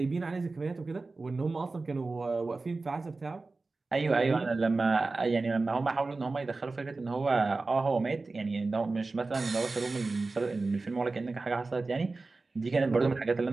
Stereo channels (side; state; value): left; quieter; 3.6 dB